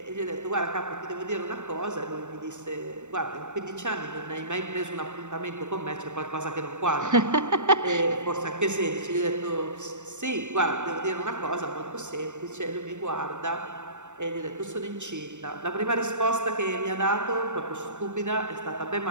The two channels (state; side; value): late; left; 0.84 ms